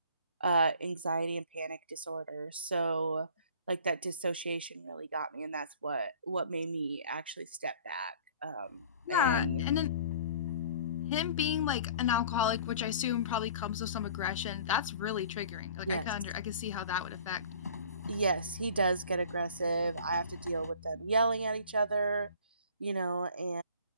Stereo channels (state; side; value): inverted; both; correlation -0.48